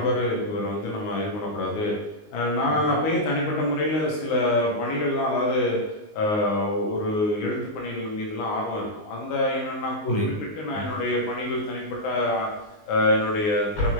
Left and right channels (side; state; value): right; late; 19 ms